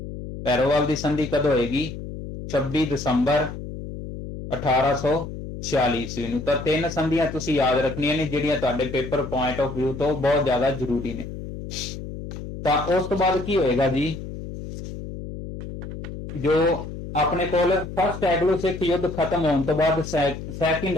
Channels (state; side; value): noise; left; hum, 9 dB below the sound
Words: ਪੈਰੋਵਾਲ ਦੀ ਸੰਧੀ ਕਦੋਂ ਹੋਏਗੀ? 26 ਦਸੰਬਰ 1846 ਈਸਵੀ ਨੂੰ। ਤਾਂ 3 ਸੰਧੀਆਂ ਤੁਸੀਂ ਯਾਦ ਰੱਖਣੀਆਂ ਨੇ ਜਿਹੜੀਆਂ ਤੁਹਾਡੇ ਪੇਪਰ ਪੁਆਇੰਟ ਆਫ ਵਿਊ ਤੋਂ ਬਹੁਤ ਜ਼ਿਆਦਾ ਜ਼ਰੂਰੀ ਨੇ। ਤਾਂ ਉਸ ਤੋਂ ਬਾਅਦ ਕੀ ਹੋਏਗਾ ਜੀ, ਜੋ ਆਪਣੇ ਕੋਲ ਫਸਟ ਐਂਗਲੋ ਸਿੱਖ ਯੁੱਧ ਖਤਮ ਹੋਣ ਤੋਂ ਬਾਅਦ ਸੈਕਿੰਡ